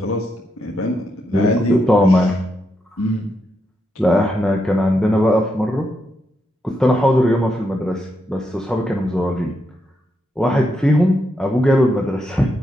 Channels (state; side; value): normal; both; correlation 0.82